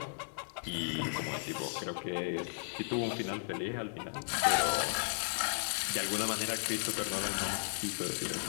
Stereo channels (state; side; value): silent; right; digital silence